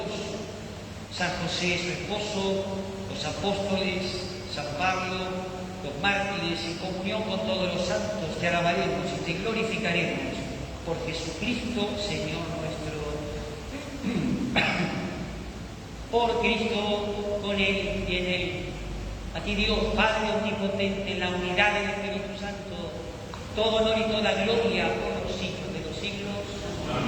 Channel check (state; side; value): identical; both; correlation 1.00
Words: San José, su esposo, los apóstoles, San Pablo, los mártires, en comunión con todos los santos, te alabaremos y te glorificaremos por Jesucristo, Señor nuestro. Por Cristo, con Él y en Él. A ti Dios, Padre omnipotente, en la unidad del Espíritu Santo, todo honor y toda gloria por los siglos de los siglos.